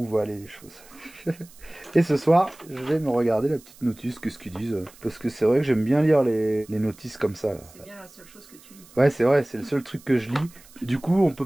vont aller les choses. Et ce soir, je vais me regarder la petite notice, qu'est-ce qu'ils disent. Parce que c'est vrai que j'aime bien lire les notices comme ça. C'est bien la seule chose que tu lis. Ouais, c'est vrai, c'est le seul truc que je lis. Du coup, on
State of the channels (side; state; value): right; noise; hiss, 24 dB below the sound